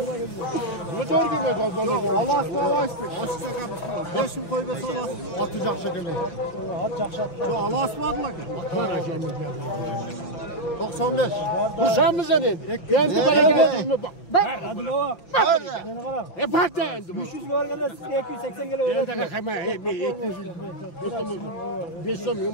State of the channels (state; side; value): late; right; 6.0 ms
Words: Bunu doğru girmeyeceğim. Allah aşkına açtık. Açtık kapısını. 5.000 koy be sabah. Atacak şekilde. Atacak şekilde. Yo Allah asmadılar ki. 95. Bu sen mi senin? Ben de bereket mi? Bak. Hadi baba. Ne fark da? 300 var gene siz 280 gele öyle. Ne demek hemen? 500